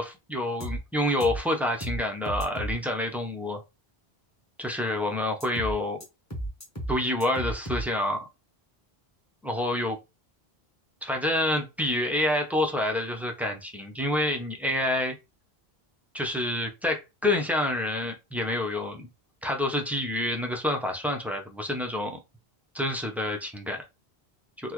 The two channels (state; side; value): normal; both; correlation 0.49